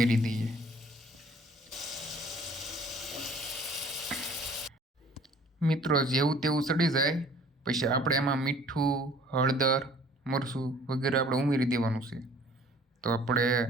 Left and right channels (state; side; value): normal; both; correlation 0.53